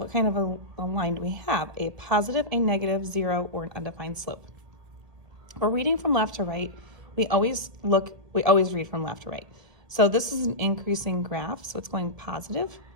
kind of a line do we have? A positive, a negative, zero, or an undefined slope. We're reading from left to right. We always read from left to right. So this is an increasing graph, so it's going positive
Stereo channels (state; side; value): late; left; 1.7 ms